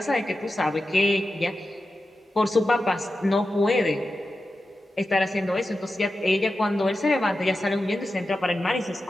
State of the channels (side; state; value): both; normal; correlation 0.92